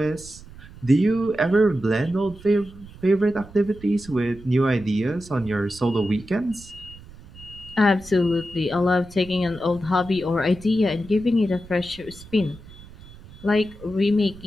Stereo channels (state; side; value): noise; right; rumble, 19 dB below the sound